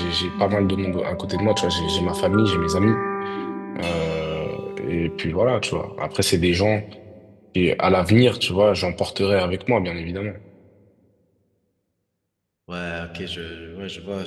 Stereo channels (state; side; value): identical; both; correlation 1.00